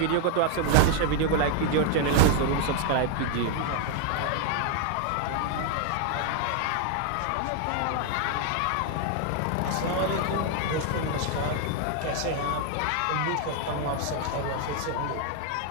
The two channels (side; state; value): both; different; correlation 0.00